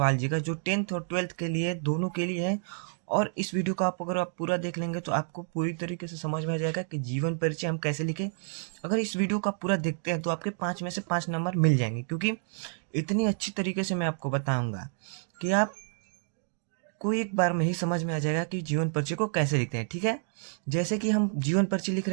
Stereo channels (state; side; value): silent; left; 58 dB below the other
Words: जी का, जो 10th और 12th के लिए दोनों के लिए है। और इस वीडियो को अगर आप पूरा देख लेंगे तो आपको पूरी तरीके से समझ में आ जाएगा कि जीवन परिचय हम कैसे लिखें। अगर इस वीडियो को आप पूरा देखते हैं तो आपके 5 में से 5 नंबर मिल जाएंगे, क्योंकि इतनी अच्छी तरीके से मैं आपको बताऊँगा कि आप को एक बार में ही समझ में आ जाएगा कि जीवन परिचय को कैसे लिखते हैं। ठीक है, जैसे कि हम जीवन परिचय लिख